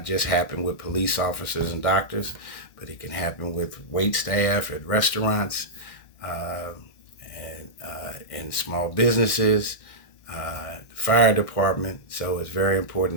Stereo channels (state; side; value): late; right; 1.6 ms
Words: just happen with police officers and doctors, but it can happen with wait staff at restaurants and small businesses, fire department. So it's very